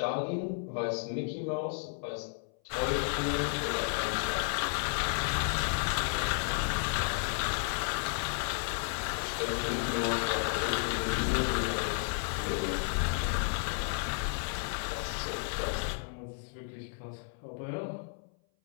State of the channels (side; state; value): right; silent; 56 dB below the other